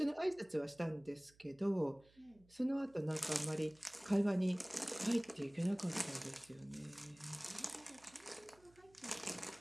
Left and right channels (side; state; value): right; noise; hum, 28 dB below the sound